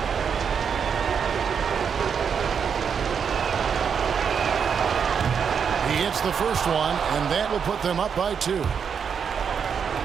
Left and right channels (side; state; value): left; quieter; 6.8 dB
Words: The first one, and that will put them up by 2.